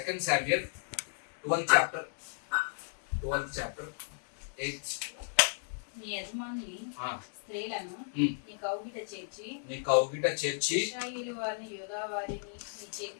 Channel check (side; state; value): right; silent; 55 dB below the other